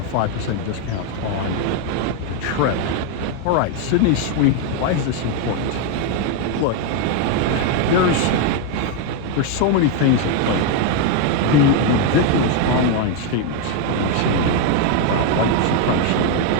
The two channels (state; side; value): different; both; correlation 0.01